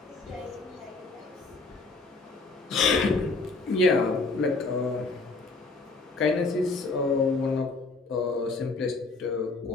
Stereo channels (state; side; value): quieter; right; 3.7 dB